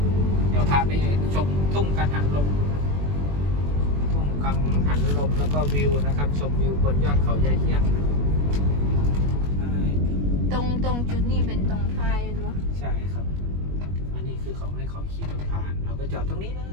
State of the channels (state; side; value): late; left; 21 ms